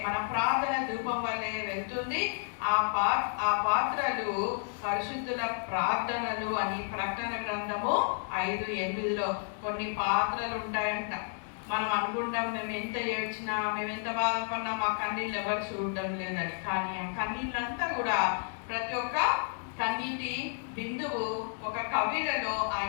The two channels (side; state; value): right; silent; 57 dB below the other